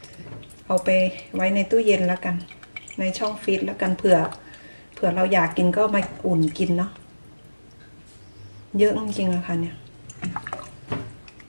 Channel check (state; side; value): inverted; both; correlation -1.00